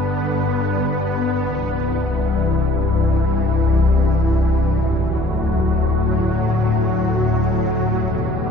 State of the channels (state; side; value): normal; both; correlation 0.53